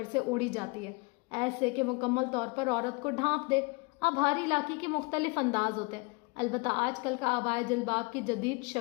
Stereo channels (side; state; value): right; quieter; 29.4 dB